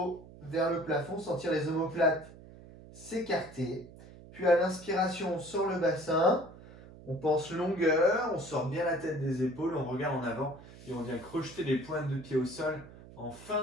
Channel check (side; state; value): right; noise; hum, 18 dB below the sound